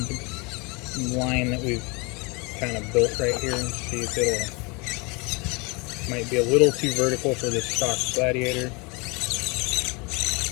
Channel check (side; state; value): right; quieter; 28.4 dB